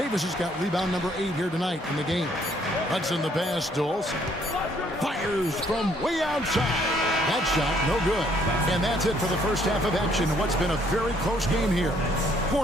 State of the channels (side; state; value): both; normal; correlation 0.65